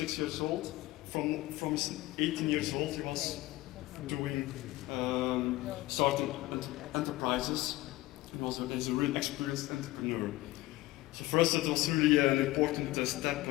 years old. From his 18 years old, he was doing starting enterprises. He's a real experienced entrepreneur. So for us, it was really an important step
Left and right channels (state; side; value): quieter; right; 18.2 dB